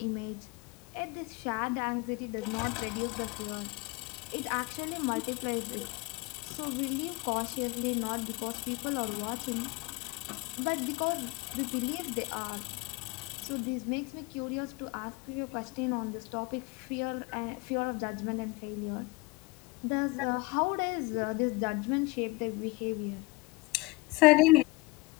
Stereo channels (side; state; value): right; quieter; 23.9 dB